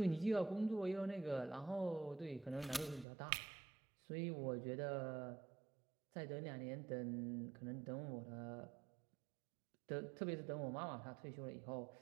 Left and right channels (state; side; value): drops out; left; at 3.1 s